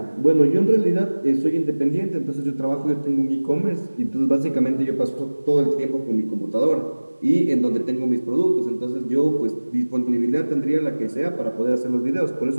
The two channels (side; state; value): both; inverted; correlation -1.00